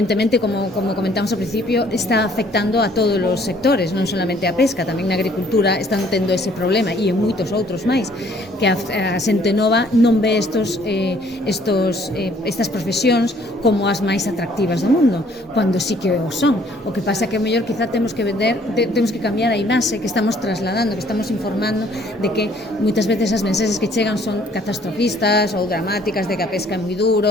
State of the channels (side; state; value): both; normal; correlation 0.61